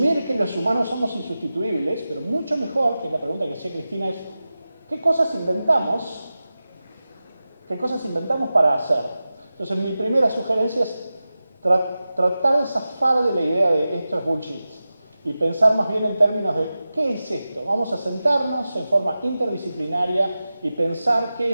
que los humanos somos insustituibles, pero mucho mejor, que es la pregunta que hacía Cristina, es ¿qué cosas inventamos? ¿Qué cosas inventamos para hacer? Entonces mi primera sugerencia es tratar de zafar de la idea de esto es bullshit y pensar más bien en términos de ¿qué es esto? Vamos a sentarnos en forma interdisciplinaria y pensar qué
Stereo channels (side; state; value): both; inverted; correlation -0.94